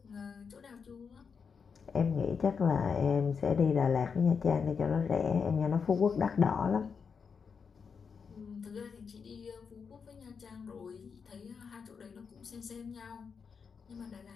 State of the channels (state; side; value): quieter; right; 5.9 dB